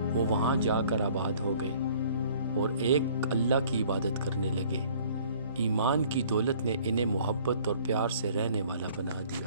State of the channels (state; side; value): inverted; both; correlation -0.55